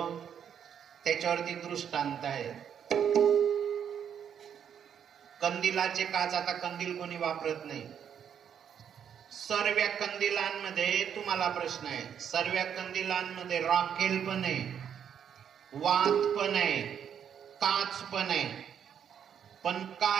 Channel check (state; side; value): quieter; left; 8.4 dB